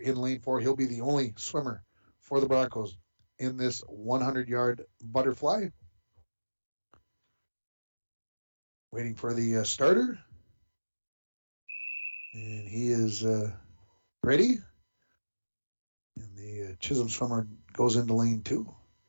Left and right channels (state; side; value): inverted; both; correlation -1.00